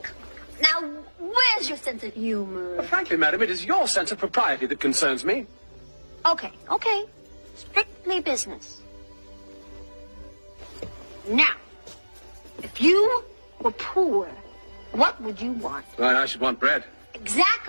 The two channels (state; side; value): inverted; both; correlation -1.00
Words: now, where's your sense of humor? Frankly, madam, it is your sense of propriety that concerns me. Okay. Strictly business. Now, if you were poor, what would you want? Well, I should want bread.